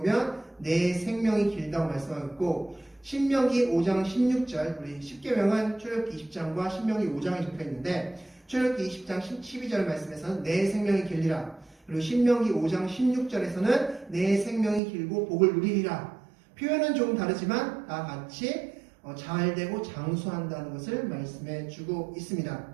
내 생명이 길다고 말씀하고 있고, 신명기 5장 16절, 우리 10계명은 출애굽기 20장과 신명기 5장에 적혀 있는데, 출애굽기 20장 12절 말씀에서는 내 생명이 길리라, 그리고 신명기 5장 16절에서는 내 생명이 길고 복을 누리리라. 표현은 조금 다르지만 다 같이 잘되고 장수한다는 것을 말씀해 주고 있습니다.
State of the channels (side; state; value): left; drops out; at 14.8 s